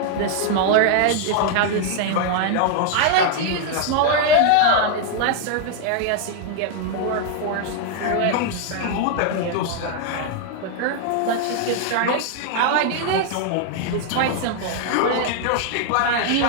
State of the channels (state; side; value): different; both; correlation 0.00